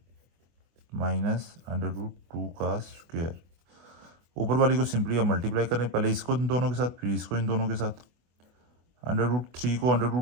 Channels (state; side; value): late; left; 24 ms